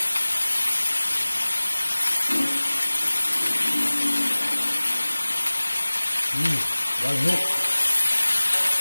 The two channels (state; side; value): inverted; both; correlation -1.00